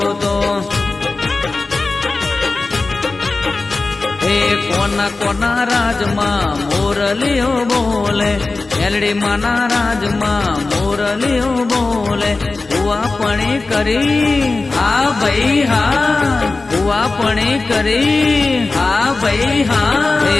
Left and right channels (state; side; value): quieter; right; 3.6 dB